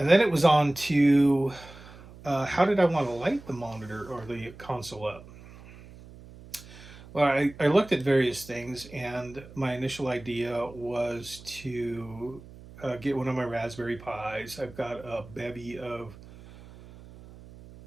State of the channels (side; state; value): right; noise; hum, 19 dB below the sound